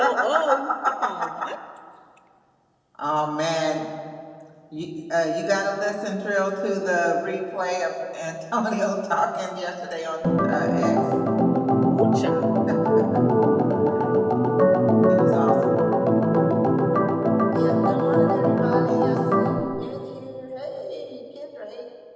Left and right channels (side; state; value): both; identical; correlation 1.00